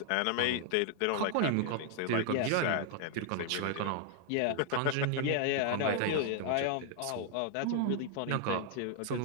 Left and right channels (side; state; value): both; different; correlation 0.00